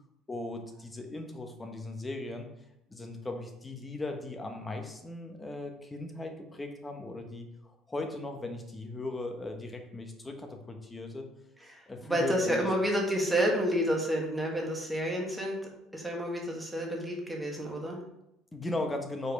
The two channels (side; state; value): both; normal; correlation 0.69